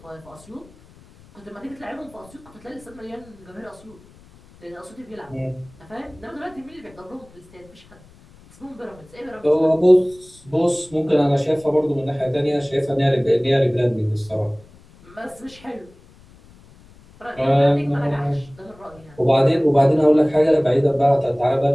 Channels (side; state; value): left; noise; rumble, 25 dB below the sound